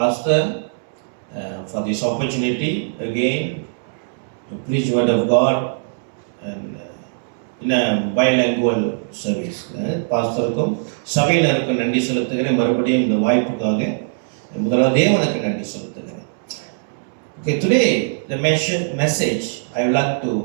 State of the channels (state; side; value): silent; left; digital silence